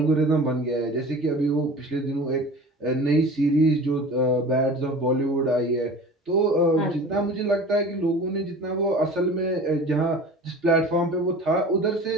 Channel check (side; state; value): both; normal; correlation 0.39